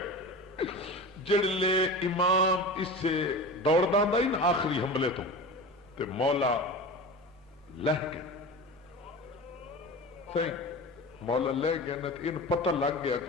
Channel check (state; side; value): normal; both; correlation 0.30